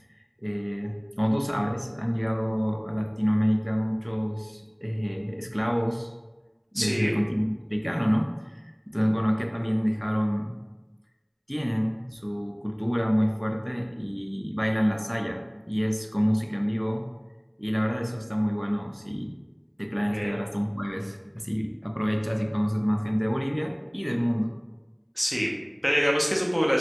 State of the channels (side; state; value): both; identical; correlation 1.00